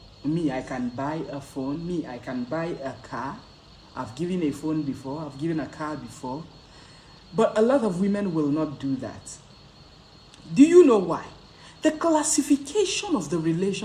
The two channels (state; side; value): identical; both; correlation 1.00